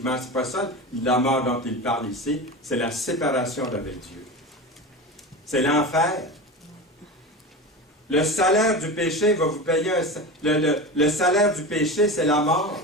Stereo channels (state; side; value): normal; both; correlation 0.27